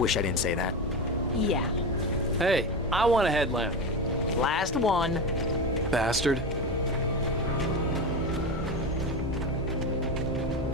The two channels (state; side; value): normal; both; correlation 0.21